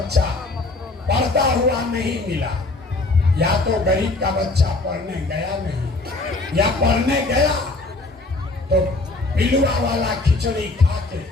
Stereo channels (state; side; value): quieter; right; 3.2 dB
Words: पढ़ता हुआ नहीं मिला। या तो गरीब का बच्चा पढ़ने गया नहीं, या पढ़ने गया तो पिलुआ वाला खिचड़ी खा के